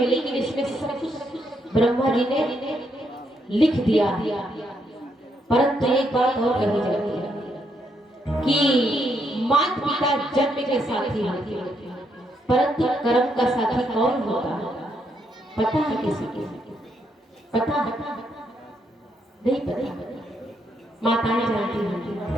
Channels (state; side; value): normal; both; correlation 0.76